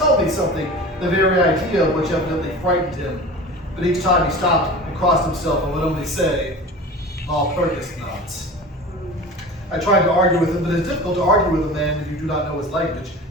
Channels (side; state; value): both; normal; correlation 0.36